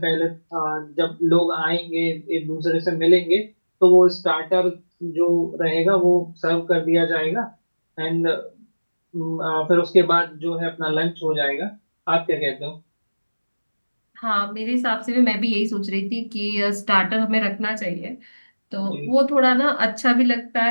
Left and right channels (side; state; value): both; inverted; correlation -1.00